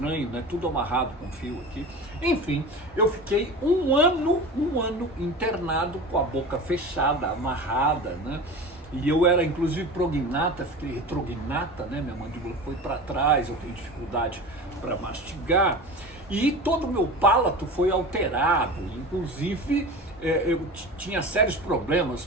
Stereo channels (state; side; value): normal; both; correlation 0.32